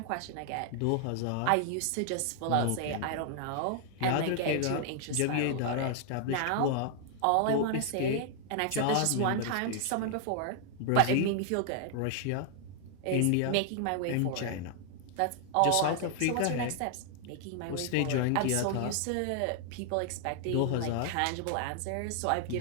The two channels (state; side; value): different; both; correlation 0.00